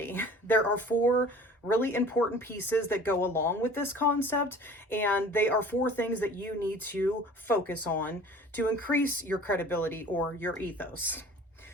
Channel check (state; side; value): normal; both; correlation 0.46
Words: There are four really important pieces that go along with this concept, and they are four things that you need to focus on to increase your credibility or your ethos.